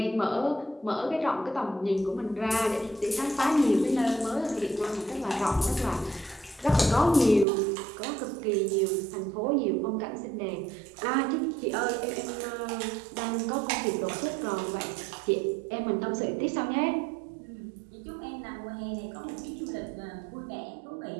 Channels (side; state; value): left; drops out; at 7.5 s